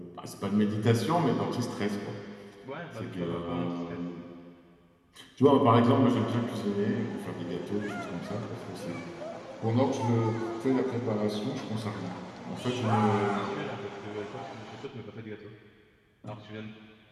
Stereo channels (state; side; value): identical; both; correlation 1.00